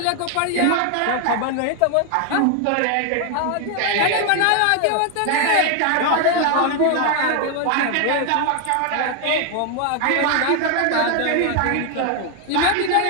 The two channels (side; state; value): both; different; correlation 0.01